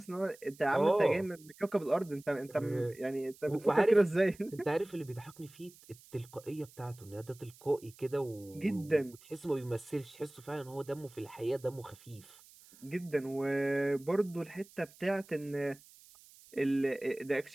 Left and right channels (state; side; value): noise; right; hiss, 23 dB below the sound